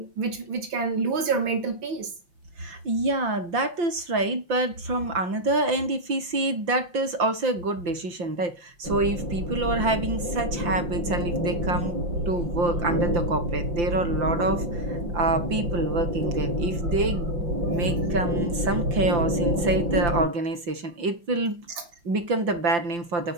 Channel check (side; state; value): left; late; 5.8 ms